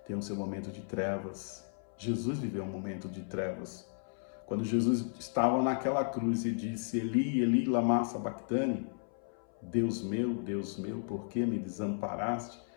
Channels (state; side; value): silent; right; 55 dB below the other